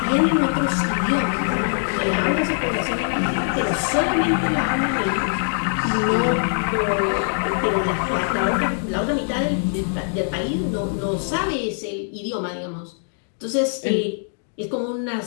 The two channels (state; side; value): silent; right; digital silence